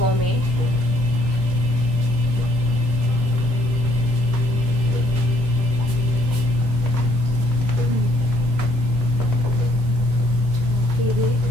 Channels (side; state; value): both; normal; correlation 0.65